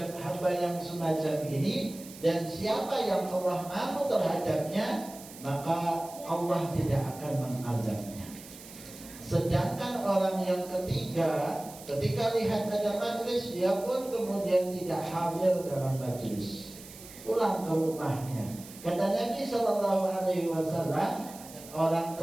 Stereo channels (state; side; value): noise; right; hiss, 17 dB below the sound